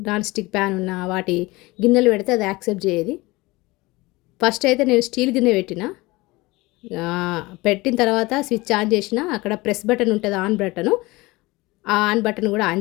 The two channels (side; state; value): right; quieter; 21.8 dB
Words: నాన్ స్టిక్ ప్యాన్ ఉన్న వాటి గిన్నెలు పెడితే అది యాక్సెప్ట్ చేయదు. ఫస్ట్ అయితే నేను స్టీల్ గిన్నె పెట్టిన తర్వాత స్విచ్ ఆన్ చేసిన. అక్కడ ప్రెస్ బటన్ ఉంటుంది, ఆన్ బటను. ఆ ఆన్ బటన్ కూడా ఆన్